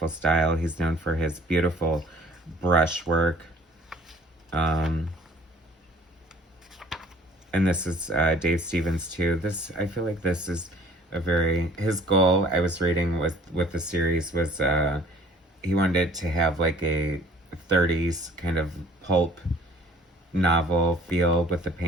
style. He's known for his beautiful brushwork. And this is Dave Stevens too. I feel like this is his goal, I was reading with the series, was he wanted it to have like a 30s kind of pulp novel feel with the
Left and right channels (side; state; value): both; normal; correlation 0.53